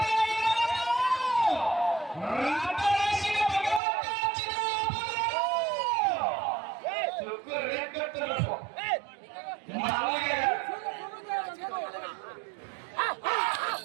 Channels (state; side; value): drops out; left; at 3.8 s